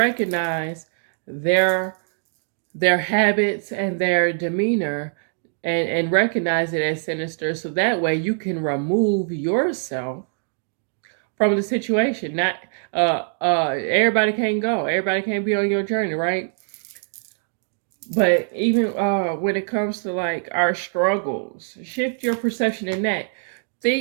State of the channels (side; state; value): left; silent; digital silence